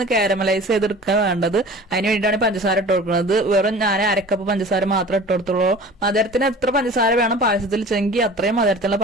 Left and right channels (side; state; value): both; normal; correlation 0.42